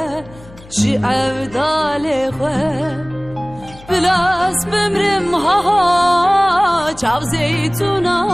جی عبدالی خوه بلاس بمرم ها چاو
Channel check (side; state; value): left; noise; hum, 21 dB below the sound